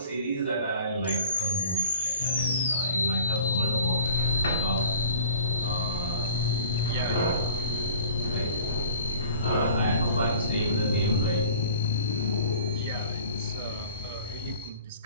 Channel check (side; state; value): both; inverted; correlation -0.46